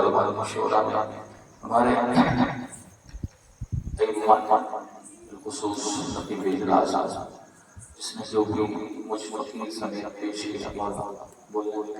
مشورہ میں ہمارے بالخصوص نقیب اجلاس جس نے جو بھی مجھ فقیر سمیت پیش کیا بولنے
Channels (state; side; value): identical; both; correlation 1.00